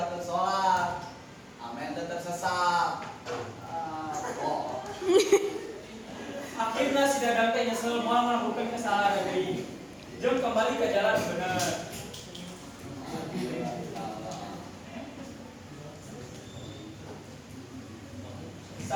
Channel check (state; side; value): identical; both; correlation 1.00